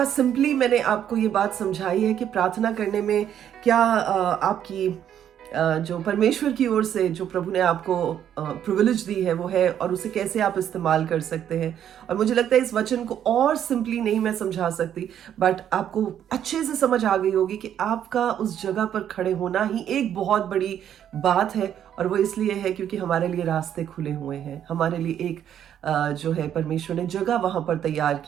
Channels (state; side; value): quieter; left; 9.9 dB